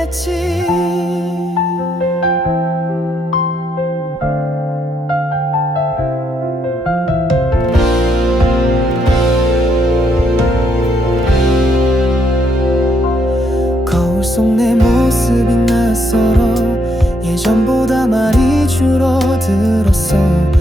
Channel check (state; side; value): normal; both; correlation 0.74